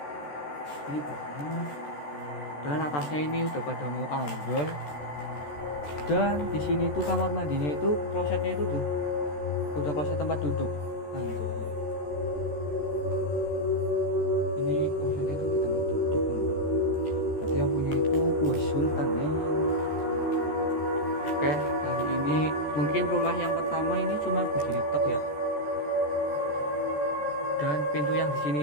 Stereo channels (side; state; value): right; late; 14 ms